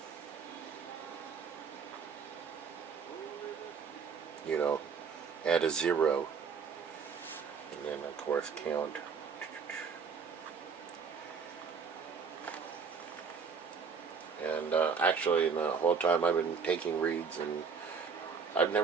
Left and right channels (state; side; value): quieter; left; 5.8 dB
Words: add a 0, and then of course count. And actually, the whole time I've been taking reads, and I've